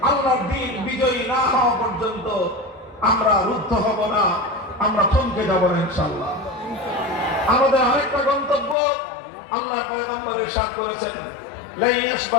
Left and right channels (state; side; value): drops out; right; at 8.8 s